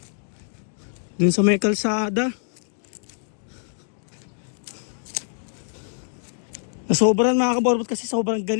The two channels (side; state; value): right; silent; digital silence